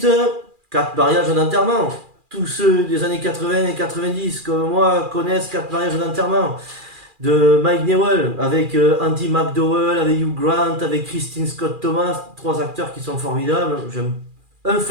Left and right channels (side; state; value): left; late; 2.4 ms